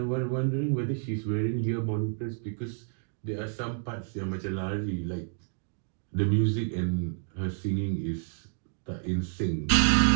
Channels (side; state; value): left; silent; digital silence